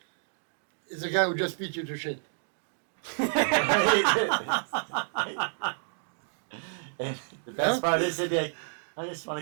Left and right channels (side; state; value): left; silent; digital silence